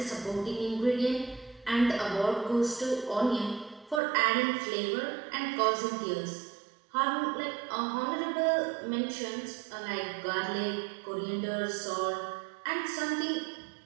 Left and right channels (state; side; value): drops out; left; at 4.0 s